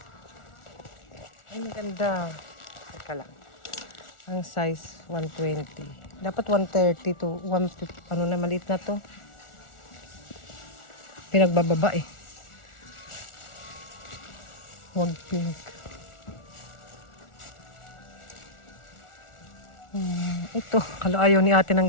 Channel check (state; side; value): late; right; 1.4 ms